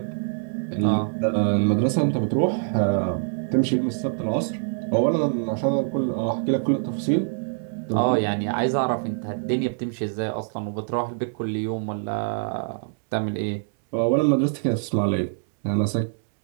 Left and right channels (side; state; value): left; silent; 62 dB below the other